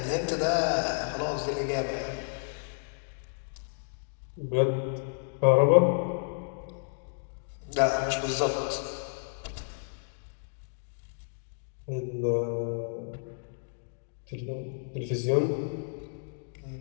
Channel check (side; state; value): right; silent; digital silence